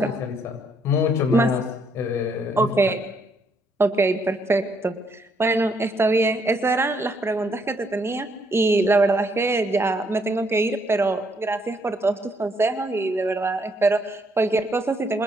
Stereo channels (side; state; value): both; normal; correlation 0.71